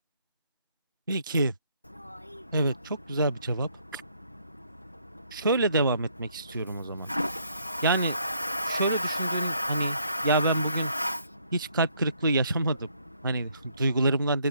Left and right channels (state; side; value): inverted; both; correlation -0.68